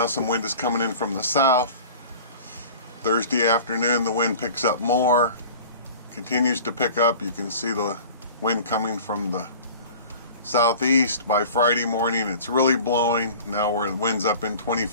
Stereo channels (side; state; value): both; inverted; correlation -0.41